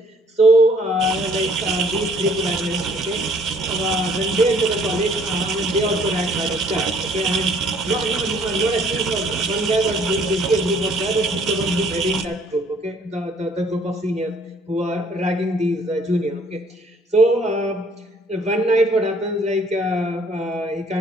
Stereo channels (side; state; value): both; normal; correlation 0.60